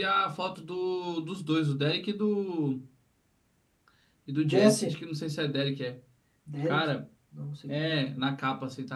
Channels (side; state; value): both; identical; correlation 1.00